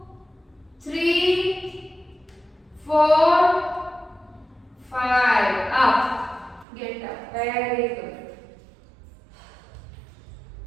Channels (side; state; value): left; drops out; at 6.7 s